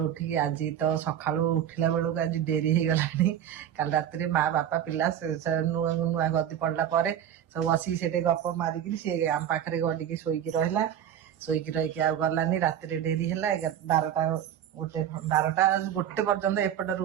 उठिकी आज तो सकाळु उठिला बेलू आज डेरी हो गलानी। काल रात्रि माँ बापा पिला नुआ नुआ गदी पड़ला पर सब बसी से गप मारिकी सी आम पाखे गडिकी शोईकी रहा। शोईकी रही आ गलानी राति डेरी है 12टा गोटे 12टा गोटे पर्यंत एपट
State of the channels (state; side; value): quieter; left; 10.0 dB